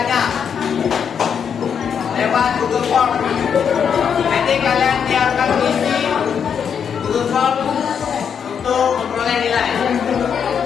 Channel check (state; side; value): quieter; right; 7.4 dB